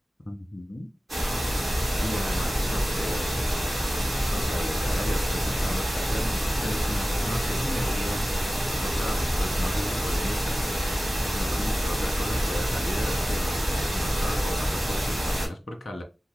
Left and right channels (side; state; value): both; normal; correlation 0.95